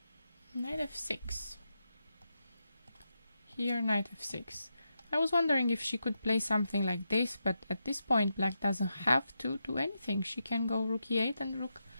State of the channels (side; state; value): both; inverted; correlation -0.86